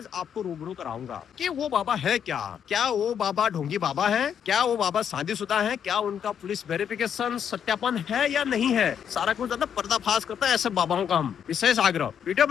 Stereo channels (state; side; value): quieter; right; 8.3 dB